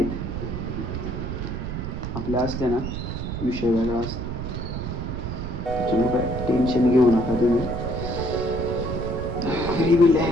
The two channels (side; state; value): right; noise; rumble, 4 dB below the sound